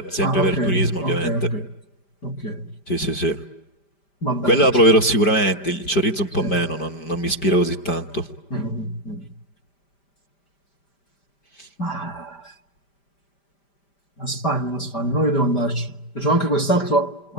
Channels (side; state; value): right; late; 5.1 ms